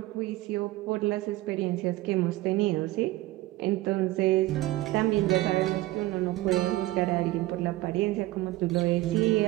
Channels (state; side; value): quieter; left; 17.8 dB